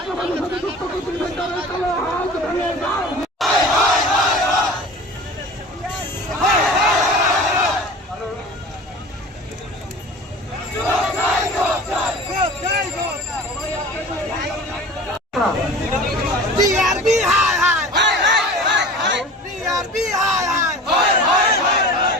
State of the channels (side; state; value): both; normal; correlation 0.39